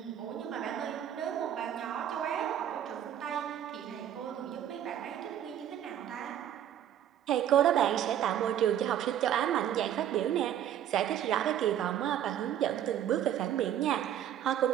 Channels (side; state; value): left; quieter; 10.6 dB